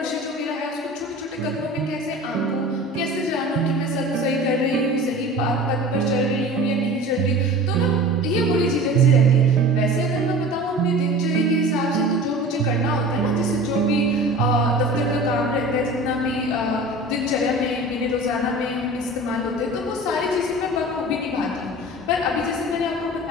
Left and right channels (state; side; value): normal; both; correlation 0.38